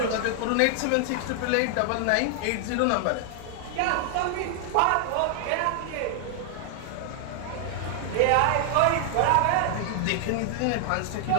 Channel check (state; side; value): different; both; correlation 0.00